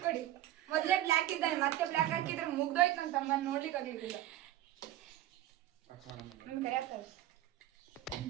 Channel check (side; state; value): left; quieter; 13.6 dB